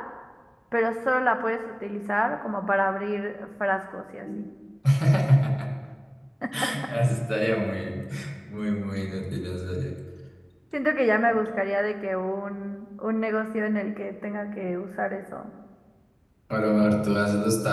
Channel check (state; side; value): identical; both; correlation 1.00